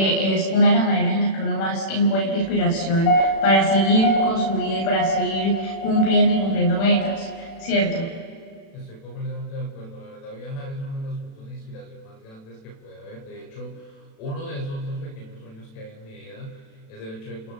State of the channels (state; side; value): late; right; 36 ms